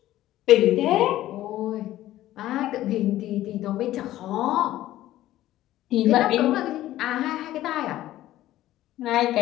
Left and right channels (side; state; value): right; quieter; 14.5 dB